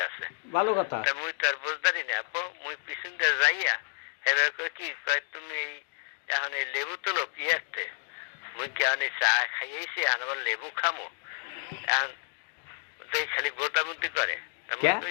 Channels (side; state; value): right; silent; digital silence